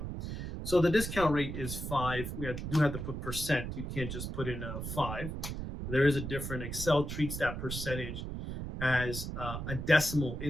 So the discount rate is 5. Do have to put percent. You can't just put in a 5. There is a different. Excel treats that percentage as a decimal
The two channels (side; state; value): right; noise; rumble, 5 dB below the sound